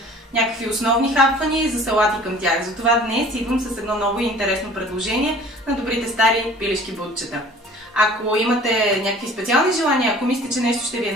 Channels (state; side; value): normal; both; correlation 0.48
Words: някакви основни хапвания и за салати към тях. Затова днес идвам с едно ново и интересно предложение на добрите стари пилешки бутчета. Ако имате някакви специални желания, ако мислите, че нещо ще ви е